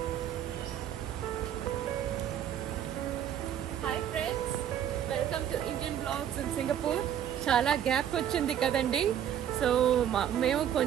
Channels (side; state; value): left; quieter; 9.9 dB